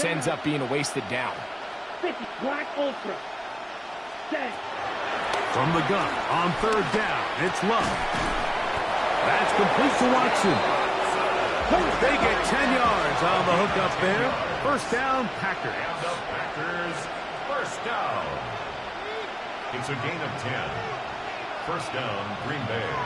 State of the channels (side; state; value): both; identical; correlation 1.00